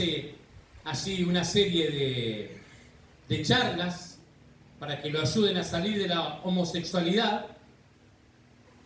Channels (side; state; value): both; identical; correlation 1.00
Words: así una serie de charlas para que lo ayuden a salir de la homosexualidad,